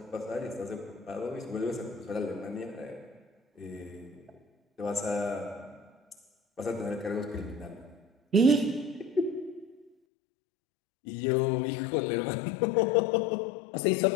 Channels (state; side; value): drops out; right; at 9.9 s